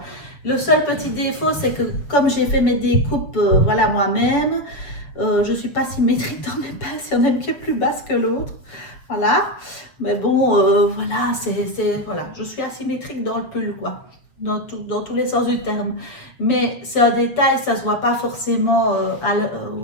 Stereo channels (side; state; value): right; late; 6.9 ms